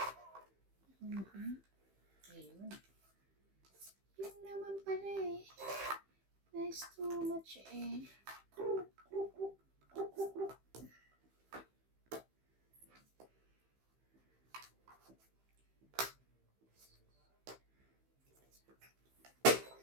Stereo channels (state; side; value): late; left; 15 ms